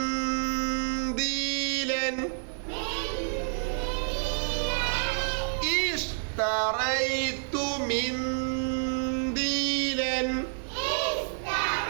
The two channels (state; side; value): silent; left; 59 dB below the other